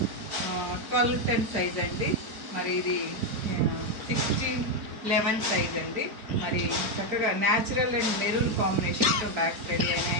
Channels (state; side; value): late; left; 4.4 ms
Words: 12-10 సైజ్ అండి. మరి ఇది 16-11 సైజ్ అండి. మరి చక్కగా న్యాచురల్ అండ్ మెరూన్ కాంబినేషన్తో బ్యాగ్స్ రెడీ